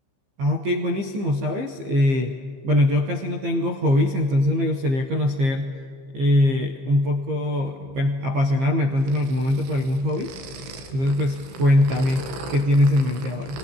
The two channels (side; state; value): left; late; 15 ms